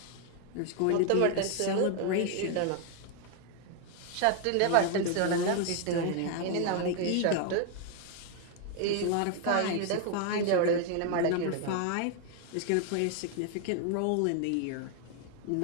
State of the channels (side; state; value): both; different; correlation 0.00